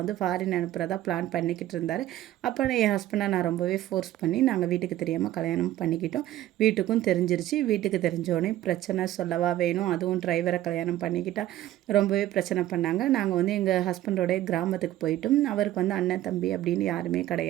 ஃபாரின் அனுப்புகிறதா பிளான் பண்ணிக்கிட்டு இருந்தார். அப்போ என் ஹஸ்பண்டை நான் ரொம்பவே ஃபோர்ஸ் பண்ணி நாங்கள் வீட்டுக்கு தெரியாமல் கல்யாணம் பண்ணிக்கிட்டோம். வீட்டுக்கும் தெரிஞ்சிருச்சு. வீட்டுக்கு தெரிஞ்சோடனே பிரச்சனை சொல்லவா வேணும், அதுவும் டிரைவரை கல்யாணம் பண்ணிக்கிட்டா ரொம்பவே பிரச்சனை பண்ணாங்க. நாங்கள் வந்து எங்கள் ஹஸ்பண்டோடைய கிராமத்துக்கு போயிட்டோம். அவருக்கு வந்து அண்ணன் தம்பி அப்படின்னு யாருமே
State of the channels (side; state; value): left; quieter; 13.9 dB